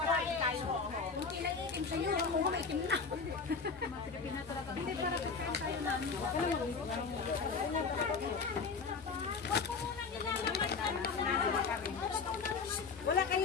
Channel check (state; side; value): quieter; right; 5.0 dB